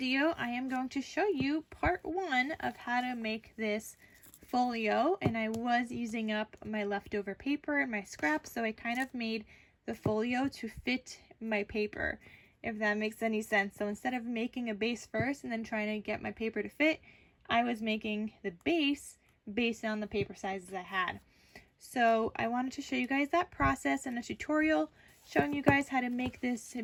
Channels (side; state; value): both; identical; correlation 1.00